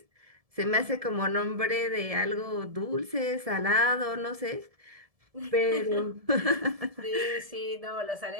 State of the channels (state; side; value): late; left; 1.7 ms